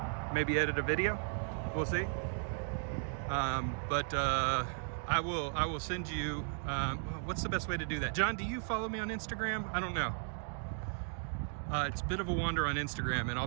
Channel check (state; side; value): silent; left; 54 dB below the other